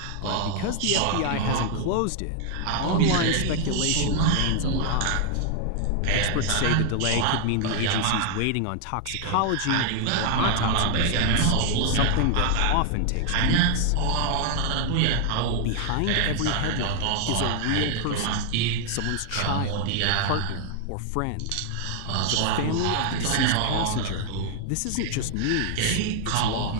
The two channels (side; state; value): both; different; correlation 0.00